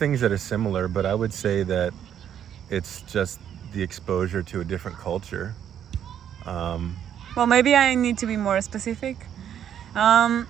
that are similar, but I would say that it's just the exposure to a different culture. Um, Well, maybe I need to be more specific.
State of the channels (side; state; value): left; quieter; 9.6 dB